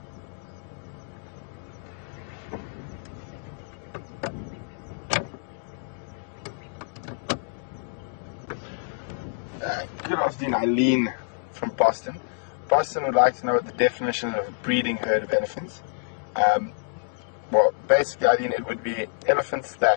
Good afternoon, Eileen from Boston. Boston would like to know what the definition of a breeding herd of elephants. Well, basically, Eileen, it would be elephants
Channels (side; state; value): right; silent; digital silence